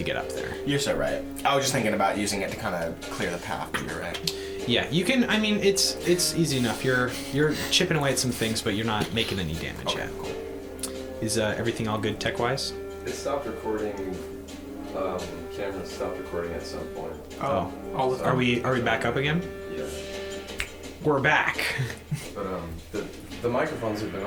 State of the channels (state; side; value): identical; both; correlation 1.00